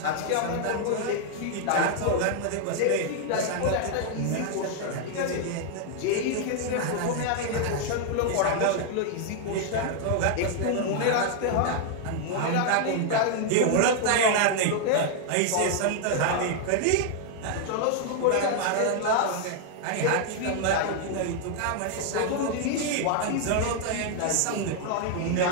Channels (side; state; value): both; different; correlation 0.00